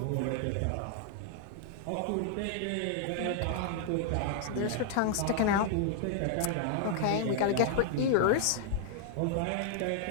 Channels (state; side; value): different; both; correlation -0.01